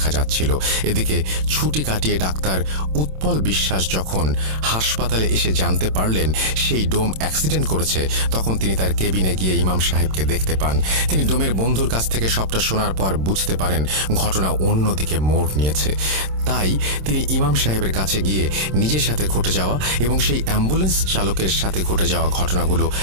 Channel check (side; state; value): left; late; 27 ms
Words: যাচ্ছিল। এদিকে ছুটি কাটিয়ে ডাক্তার উৎপল বিশ্বাস যখন হাসপাতালে এসে জানতে পারলেন সেই ডোম অ্যাক্সিডেন্ট করেছে, তখন তিনি তার কেবিনে গিয়ে ইমাম সাহেবকে দেখতে পান। তিনি ডোমের বন্ধুর কাছ থেকে সবটা শোনার পর বুঝতে পারেন ঘটনা অন্যদিকে মোড় নিয়েছে। তাই তিনি ইমাম সাহেবের কাছে গিয়ে নিজের সাথে ঘটে যাওয়া এবং সেই অ্যাম্বুলেন্স চালকের সাথে ঘটে যাওয়া ঘটনাগুলো